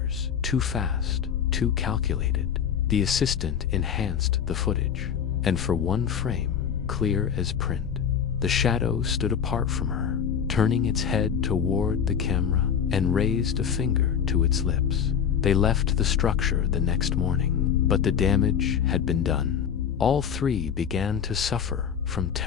too fast, too calculated. The assistant enhanced the footage, and for one frame, clear as print, the shadow stood apart from her, turning its head toward the camera and raised a finger to its lips. They left the structure the next morning, but the damage had been done. All three began to suffer from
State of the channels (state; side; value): quieter; right; 7.9 dB